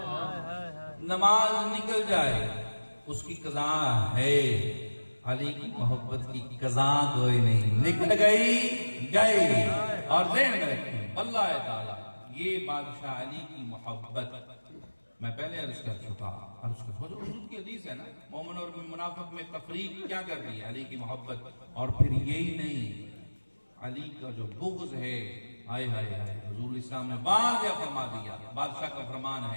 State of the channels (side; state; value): both; inverted; correlation -1.00